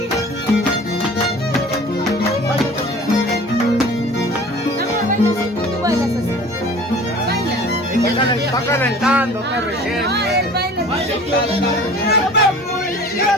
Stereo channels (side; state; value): both; normal; correlation 0.44